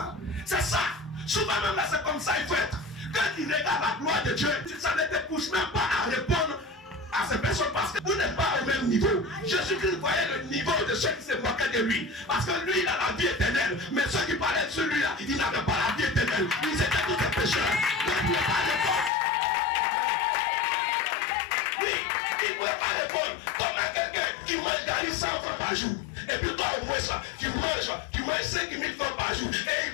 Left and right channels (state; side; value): drops out; right; at 19.1 s